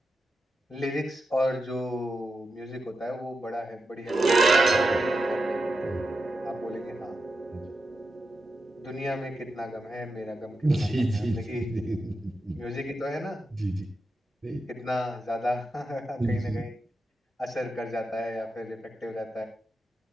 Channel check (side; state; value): both; normal; correlation 0.88